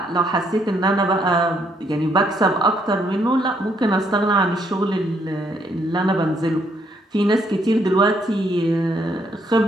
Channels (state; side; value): normal; both; correlation 0.71